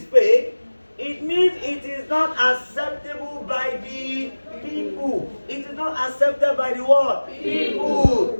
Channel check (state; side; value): inverted; both; correlation -1.00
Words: fake, it means it is not acceptable by the people. It is not accepted by the what? People.